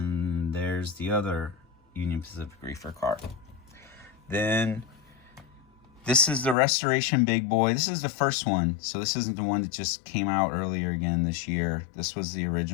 there's the other Union Pacific reefer car. Then This is the Restoration Big Boy. This is the first one. So this isn't the one that just came out earlier again this year. This was the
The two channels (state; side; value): drops out; right; at 6.6 s